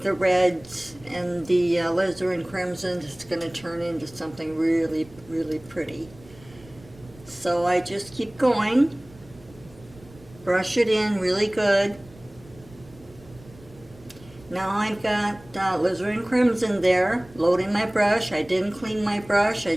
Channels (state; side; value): noise; right; rumble, 23 dB below the sound